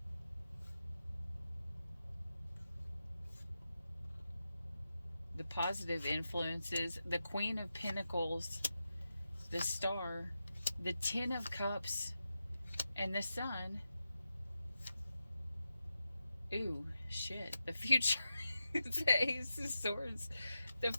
The positive influences, the Queen of Pentacles, the Star, the Ten of Cups, and the Sun. Ooh, shit. The future. The Ace of Swords, the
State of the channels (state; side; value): inverted; both; correlation -0.90